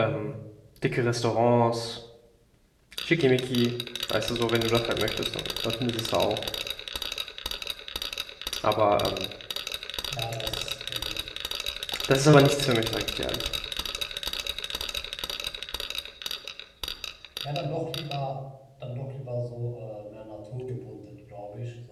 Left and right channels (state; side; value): identical; both; correlation 1.00